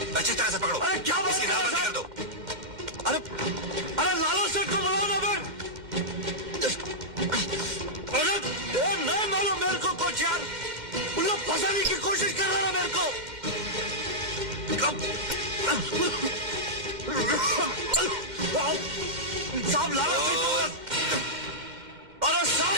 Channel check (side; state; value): left; late; 2.1 ms